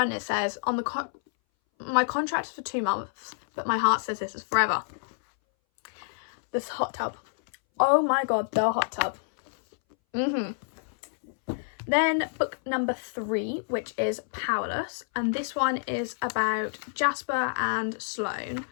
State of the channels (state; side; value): silent; right; 59 dB below the other